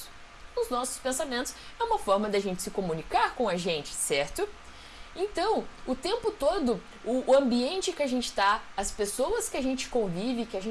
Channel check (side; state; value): both; identical; correlation 1.00